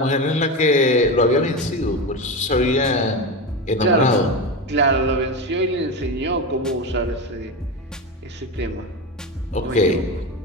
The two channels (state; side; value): normal; both; correlation 0.19